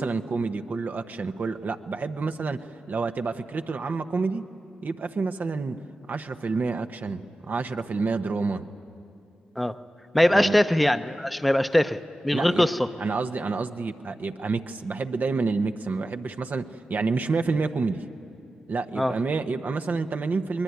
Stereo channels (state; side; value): normal; both; correlation 0.93